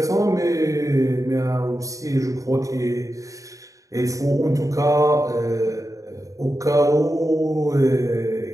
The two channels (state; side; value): late; left; 0.16 ms